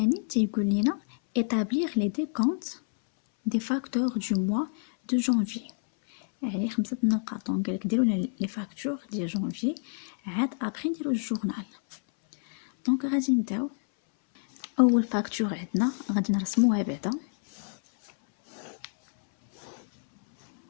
تيقول لنا établir les décomptes des facteurs du mois de janvier، يعني 5 نقاط. دونك قالك ديروا لنا لي فاكتور ديال جانفي، عاد ابري نديرو الجورنال. دونك غادي نبداو. اول فاكتور عندنا غادي نرسموها بعدا،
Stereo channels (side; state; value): right; silent; 59 dB below the other